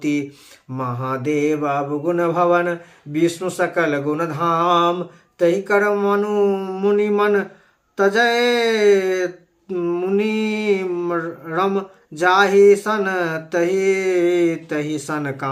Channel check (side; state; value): both; identical; correlation 1.00